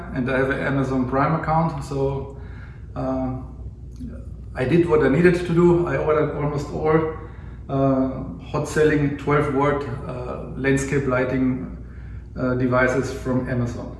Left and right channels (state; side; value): identical; both; correlation 1.00